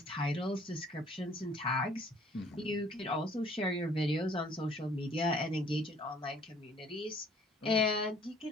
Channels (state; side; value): normal; both; correlation 0.57